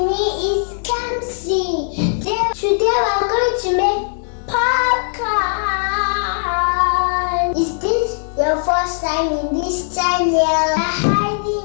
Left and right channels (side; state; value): right; silent; 67 dB below the other